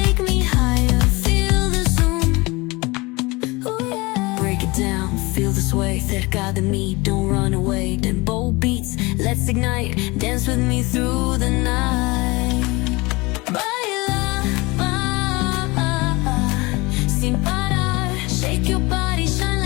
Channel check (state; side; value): quieter; right; 24.1 dB